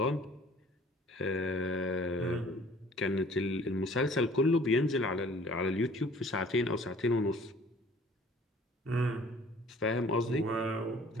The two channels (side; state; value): both; normal; correlation 0.52